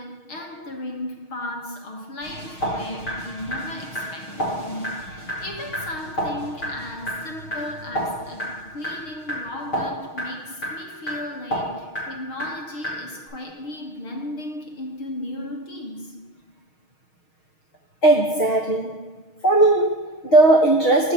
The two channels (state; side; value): late; right; 6.4 ms